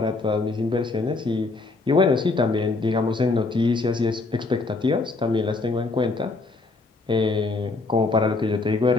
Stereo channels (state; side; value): quieter; right; 3.5 dB